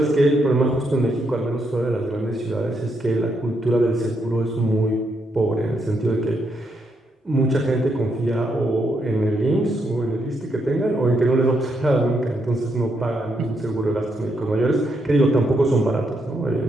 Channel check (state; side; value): normal; both; correlation 0.78